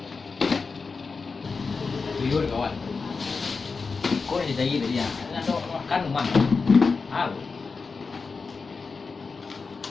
Tuyul kawan. Kau ni jadi dia. Nak makan rumah.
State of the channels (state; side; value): quieter; right; 4.6 dB